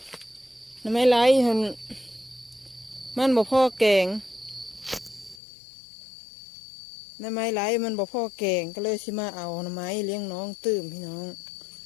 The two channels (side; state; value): right; drops out; at 5.4 s